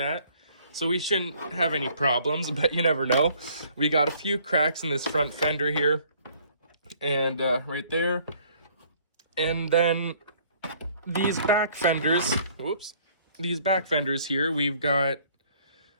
So we shouldn't have any problems, but you never know. We got a few cracks in this front fender here and right there. And then these back fenders, these back fenders here, we've got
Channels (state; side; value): inverted; both; correlation -0.60